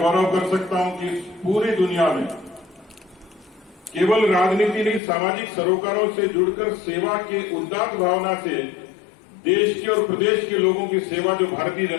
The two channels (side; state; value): right; drops out; at 5.0 s